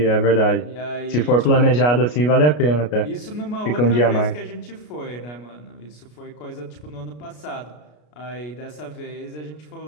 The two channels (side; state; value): right; late; 33 ms